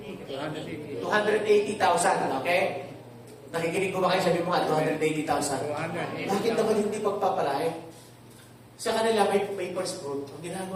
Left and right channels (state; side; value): identical; both; correlation 1.00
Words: 280,000, okay? Nakikinig ko ba kayo? Sabi mo nga, 280,000. Bakit naman hindi pagpapalahe? sa kanila may first fruit. Ang